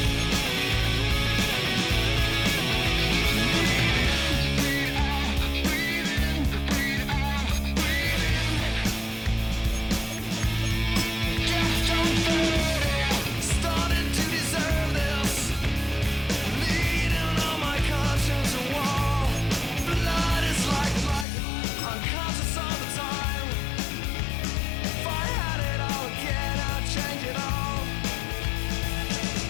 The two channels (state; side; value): drops out; right; at 21.2 s